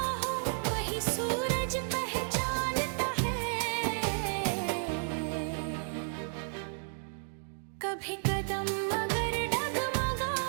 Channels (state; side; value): silent; left; digital silence